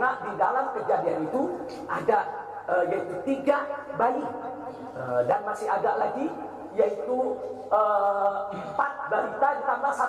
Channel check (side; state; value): both; identical; correlation 1.00